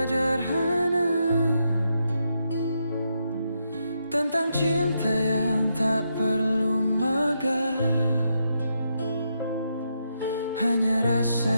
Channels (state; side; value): inverted; both; correlation -0.81